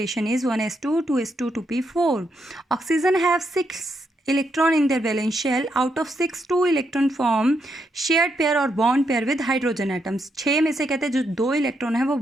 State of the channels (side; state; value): both; normal; correlation 0.79